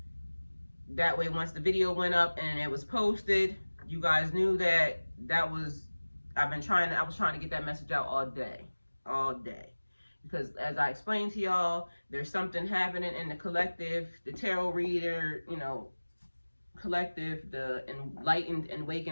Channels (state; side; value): inverted; both; correlation -1.00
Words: way once the video went up and it was posted, you guys knew that I was trying to get that message out all day, because as I explained to y'all, there's something happening in the collective, the tarot reader, collective, the enlightened and